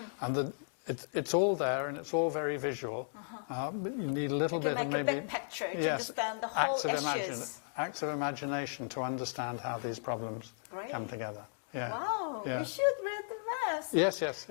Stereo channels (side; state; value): right; silent; digital silence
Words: and it's all there, and it's all very visual. But you need a little bit of maybe picture to understand the whole acts of imagination to understand how these problems come together. Yeah. Wow, yeah. we should read the maps. Yes,